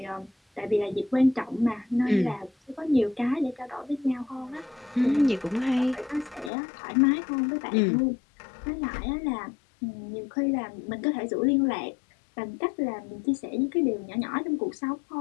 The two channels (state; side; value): drops out; right; at 6.5 s